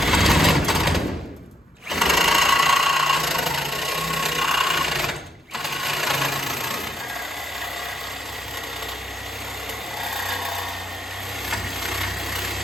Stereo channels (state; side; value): normal; both; correlation 0.75